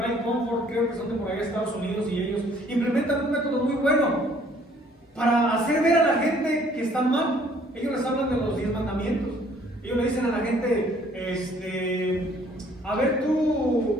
Comfort, creo que son de por ahí de Estados Unidos, y ellos implementan un método muy bueno para hacer ver a la gente que están mal. Ellos les hablan de los 10 mandamientos. Ellos le dicen a la gente, a ver,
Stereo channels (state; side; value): normal; both; correlation 0.60